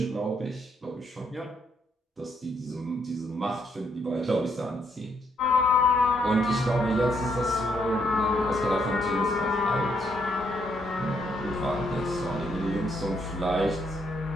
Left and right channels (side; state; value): both; normal; correlation 0.73